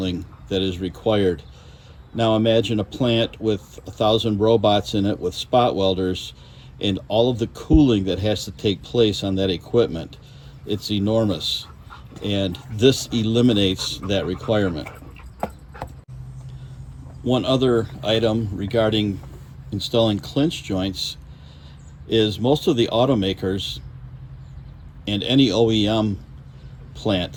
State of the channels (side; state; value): both; identical; correlation 1.00